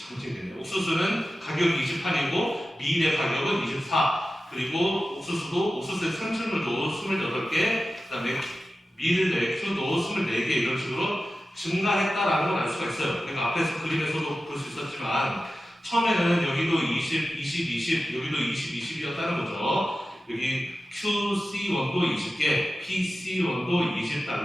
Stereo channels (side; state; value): both; normal; correlation 0.94